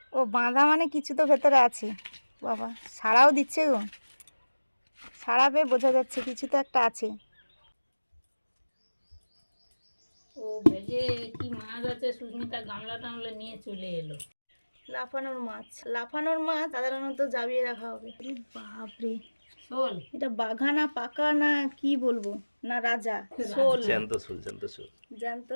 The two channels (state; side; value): inverted; both; correlation -1.00